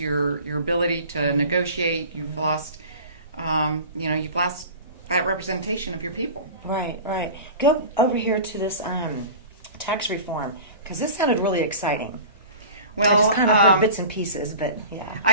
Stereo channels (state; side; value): inverted; both; correlation -0.37